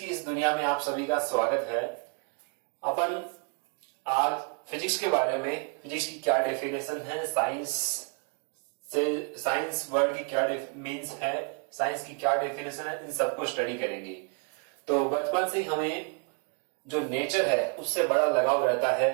इस दुनिया में आप सभी का स्वागत है। अपन आज फिजिक्स के बारे में, फिजिक्स की क्या डेफिनेशन है, साइंस वर्ल्ड की क्या मीन्स है, साइंस की क्या डेफिनेशन है, इन सबको स्टडी करेंगे। तो बचपन से हमें जो नेचर है उससे बड़ा लगाव रहता है।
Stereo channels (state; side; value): quieter; left; 38.7 dB